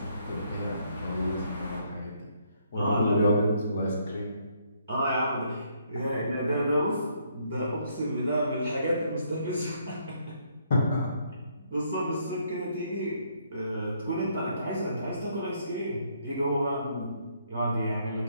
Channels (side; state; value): both; inverted; correlation -0.70